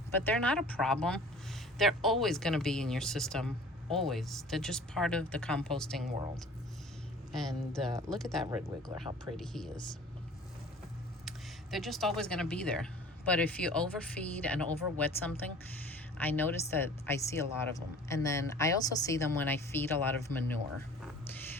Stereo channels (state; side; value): normal; both; correlation 0.46